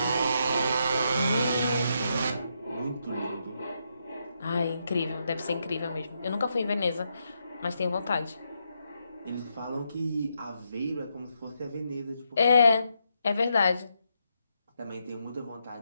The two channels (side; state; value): both; inverted; correlation -0.81